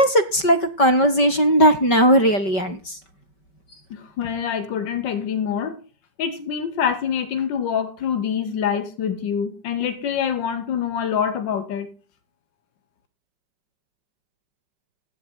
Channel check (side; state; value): right; late; 5.2 ms